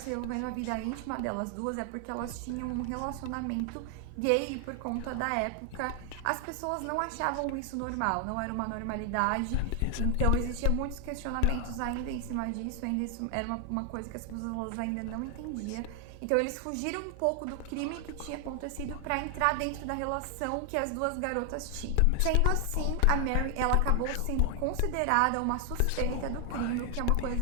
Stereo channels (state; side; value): different; both; correlation 0.00